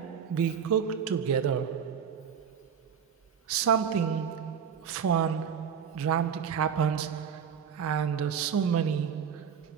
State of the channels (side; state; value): left; quieter; 7.6 dB